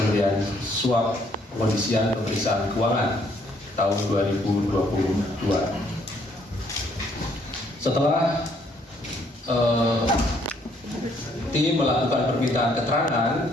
suap pengondisian pemeriksaan keuangan tahun 2022. Setelah tim melakukan permintaan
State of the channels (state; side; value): normal; both; correlation 0.67